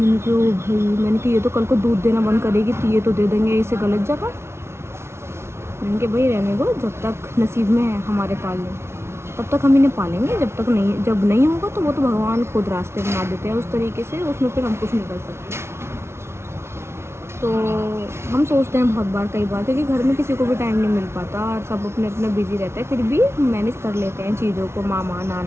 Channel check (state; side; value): late; left; 0.13 ms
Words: कहा ओ भाई, मैंने कहा ये तो कल को दूध देना बंद करेगी तो ये तो दे देंगे इसे गलत जगह। मैंने कहा भाई रहने दो, जब तक नसीब में है हमारे पालने तब तक हम इन्हें पालेंगे, जब नहीं होगा तो वो तो भगवान खुद रास्ते बना देते हैं उस तरीके से, उसमें फिर हम कुछ नहीं कर सकते। तो हम सोचते हैं बहुत बार, कई बार, क्योंकि घर में किसी को भी टाइम नहीं मिल पाता और सब अपने अपने बिजी रहते हैं, फिर भी मैनेज कर लेते हैं चीज़ों को। मामा